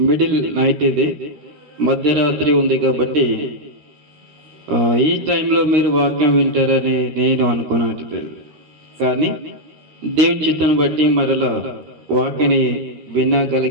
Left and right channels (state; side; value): late; left; 13 ms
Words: మిడిల్ నైట్ ఇది, మధ్యరాత్రి ఉంది కాబట్టి ఈ టైంలో మీరు వాక్యం వింటారని నేను అనుకోనట్లేదు. కానీ దేవుని చిత్తాన్ని బట్టి మరలా వాక్యని